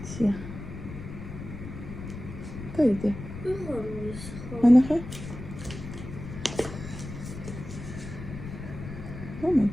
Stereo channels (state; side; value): noise; left; rumble, 10 dB below the sound